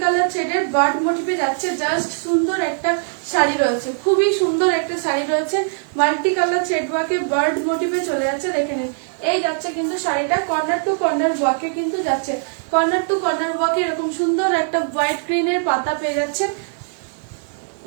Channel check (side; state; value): left; silent; digital silence